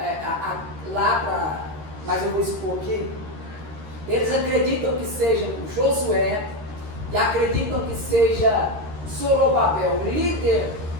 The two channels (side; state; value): left; late; 13 ms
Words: mas eu vou expor aqui. Eles acreditam que seja Josué e acreditam que seja Zorobabel, o líder